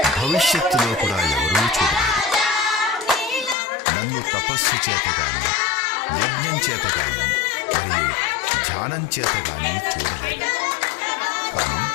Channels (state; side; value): drops out; right; at 3.6 s